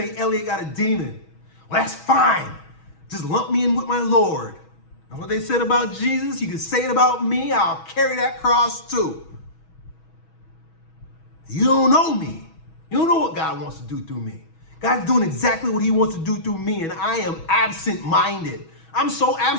Elliott got a demon. Well, that's fine. Just lump me in with my Lord. And what they said about Jesus, you can say it about me. I'll carry that cross too. You don't know me. You don't know what God wants to do through me. God's doing exactly what he wants to do through me, and I am absent-minded. I'm so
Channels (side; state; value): right; late; 6.2 ms